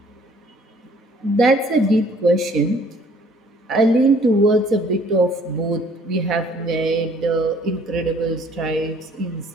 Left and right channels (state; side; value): normal; both; correlation 0.58